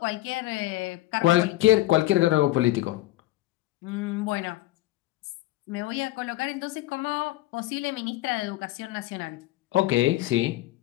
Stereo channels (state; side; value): quieter; right; 16.7 dB